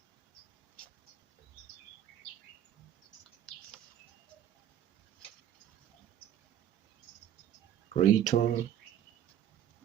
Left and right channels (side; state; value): left; quieter; 10.6 dB